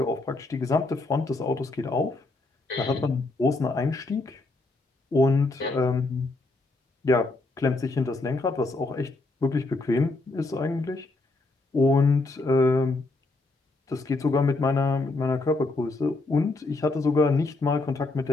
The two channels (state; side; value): quieter; right; 3.2 dB